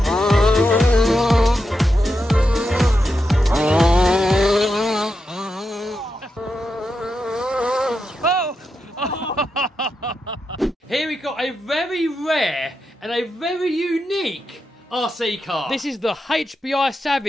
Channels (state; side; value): normal; both; correlation 0.87